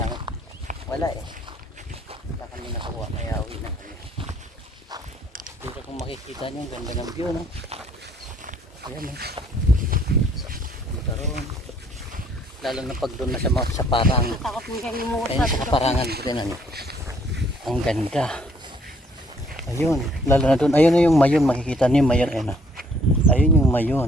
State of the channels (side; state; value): both; normal; correlation 0.63